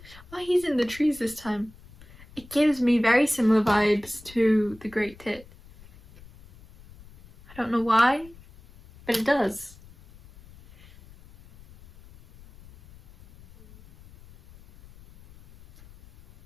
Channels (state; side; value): noise; left; rumble, 23 dB below the sound